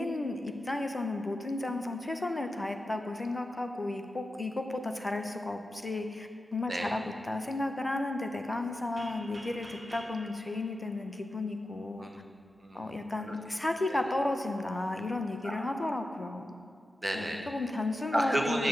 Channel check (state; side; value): normal; both; correlation 0.91